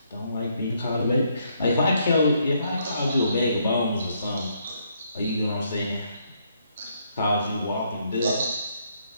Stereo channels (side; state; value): both; inverted; correlation -0.72